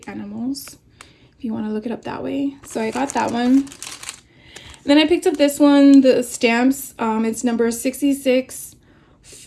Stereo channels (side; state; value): both; identical; correlation 1.00